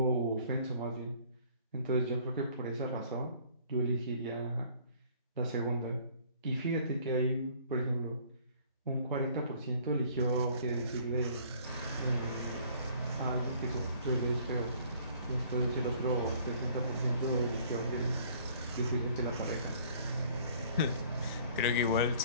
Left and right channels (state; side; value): inverted; both; correlation -0.56